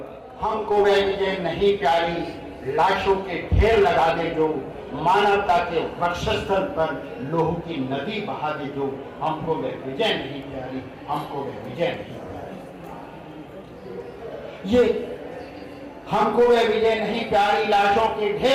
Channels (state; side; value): identical; both; correlation 1.00